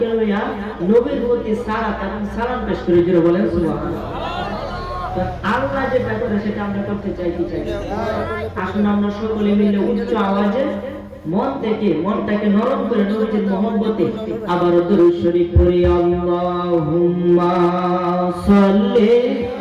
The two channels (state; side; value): identical; both; correlation 1.00